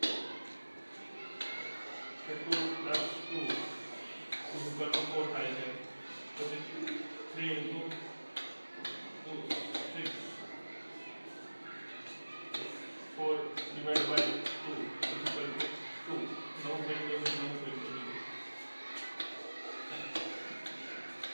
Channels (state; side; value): inverted; both; correlation -1.00